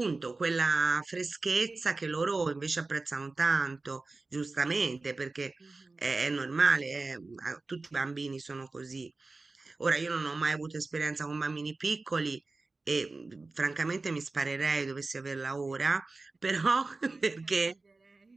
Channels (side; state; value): left; quieter; 3.5 dB